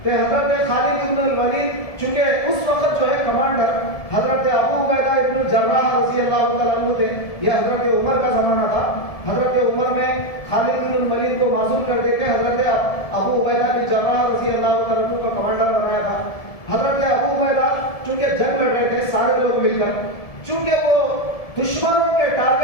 کہ حضرت خالد بن الولید چونکہ اس وقت جو ہے کمانڈر حضرت ابو عبیدہ ابن الجراح رضی اللہ تعالیٰ عنہ تھے، یہ حضرت عمر کا زمانہ تھا۔ حضرت عمر نے خالد بن الولید کو معزول کر دے کے حضرت ابو عبیدہ بن الجراح رضی اللہ تعالیٰ عنہ کو کمانڈر بنایا تھا۔ حضرت ابو عبیدہ چونکہ جنگ لڑ رہے تھے سارے لوگ مل کر، چونکہ وہ دشمنوں کے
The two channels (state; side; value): late; right; 1.7 ms